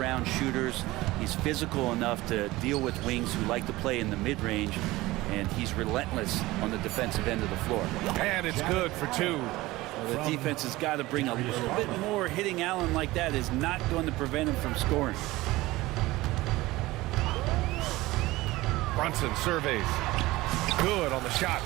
shooters. He's physical enough to deal with wings who like to play in the mid-range. And he's relentless on the defensive end of the floor. And it's good for 2. Well, the defense has got to bring a little bit more. Hitting Allen like that is not going to prevent him from scoring. Brunson surveys. Good on the shot.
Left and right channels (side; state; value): left; quieter; 19.0 dB